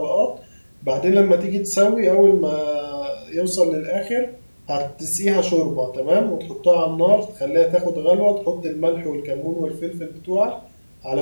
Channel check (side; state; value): both; inverted; correlation -1.00